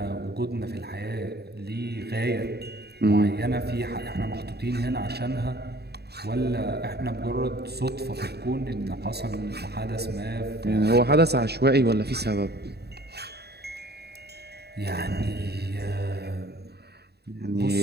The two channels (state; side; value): late; left; 0.47 ms